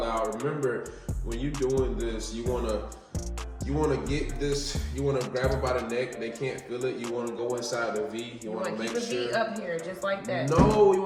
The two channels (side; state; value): both; identical; correlation 1.00